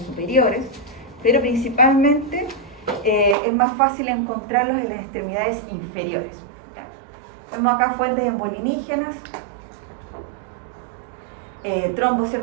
pero principalmente es más fácil encontrarlos en las extremidades inferiores. ¿Ya? Vemos acá fuentes embolinígenas, trombos,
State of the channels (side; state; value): left; drops out; at 3.4 s